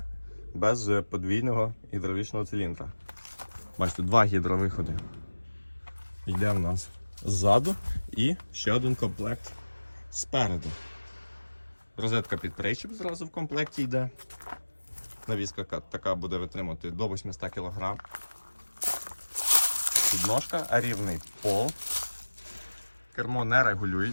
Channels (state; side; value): inverted; both; correlation -1.00